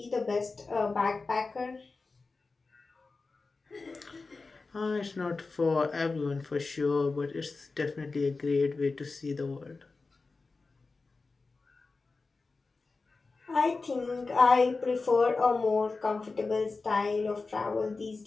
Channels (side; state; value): right; quieter; 3.9 dB